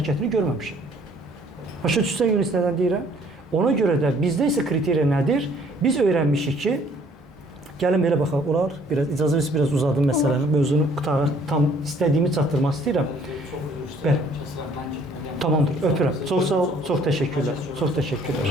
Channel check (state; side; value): normal; both; correlation 0.59